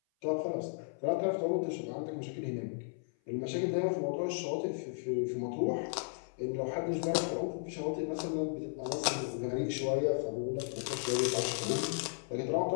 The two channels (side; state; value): right; silent; 55 dB below the other